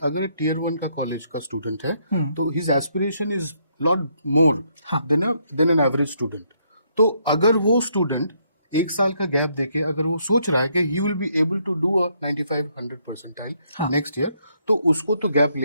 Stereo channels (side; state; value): both; inverted; correlation -0.73